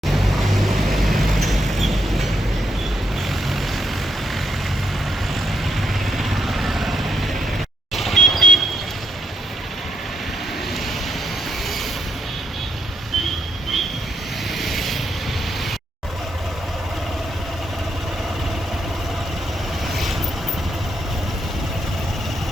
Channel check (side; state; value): both; normal; correlation 0.75